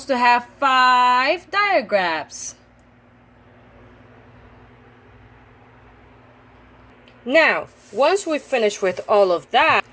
to have 5 diagrams. Now, once we finish with all of that,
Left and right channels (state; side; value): identical; both; correlation 1.00